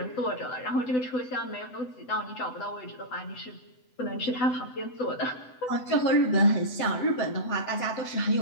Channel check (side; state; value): right; late; 7.9 ms